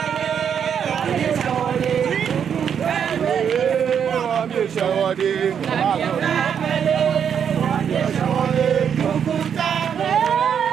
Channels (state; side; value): quieter; left; 7.9 dB